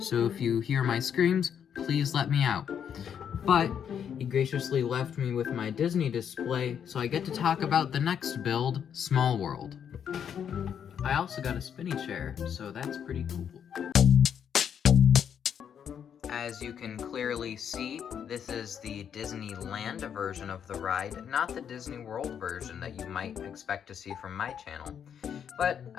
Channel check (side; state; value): right; quieter; 8.3 dB